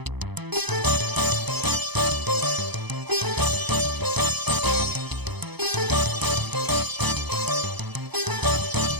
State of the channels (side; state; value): left; late; 0.99 ms